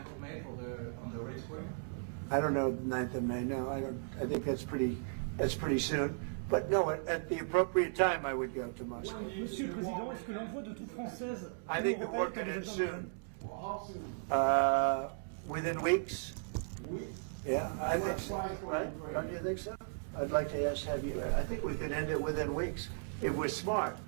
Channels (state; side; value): silent; left; 54 dB below the other